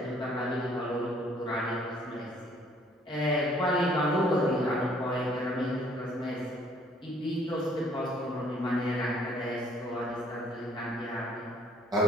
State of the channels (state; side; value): normal; both; correlation 0.61